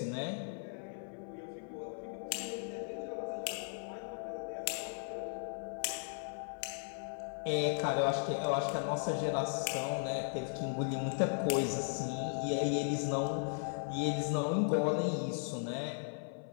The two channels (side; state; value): right; silent; 53 dB below the other